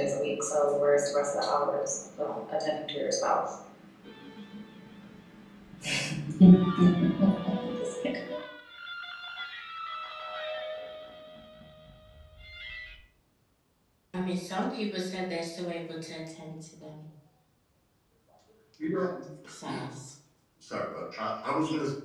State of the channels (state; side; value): identical; both; correlation 1.00